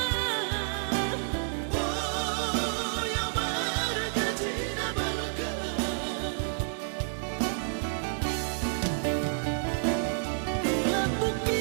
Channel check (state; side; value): silent; left; 58 dB below the other